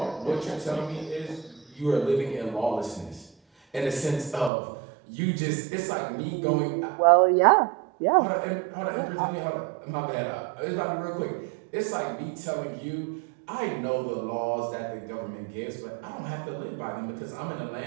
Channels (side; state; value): left; drops out; at 4.5 s